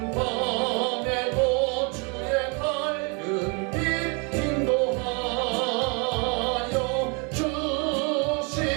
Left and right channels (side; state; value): left; quieter; 33.9 dB